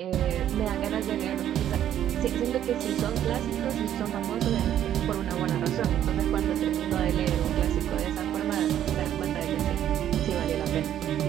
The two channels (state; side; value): quieter; left; 10.9 dB